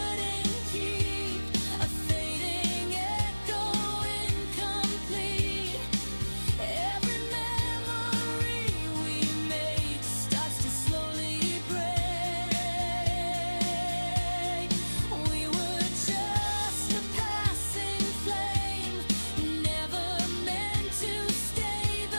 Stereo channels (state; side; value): inverted; both; correlation -1.00